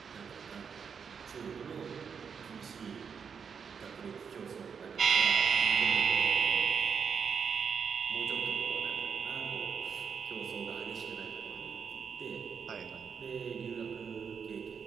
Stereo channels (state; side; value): quieter; left; 6.5 dB